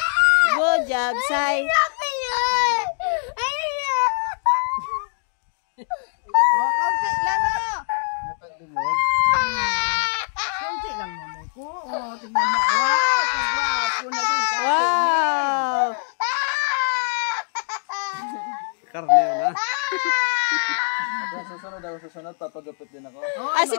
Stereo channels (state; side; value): silent; right; digital silence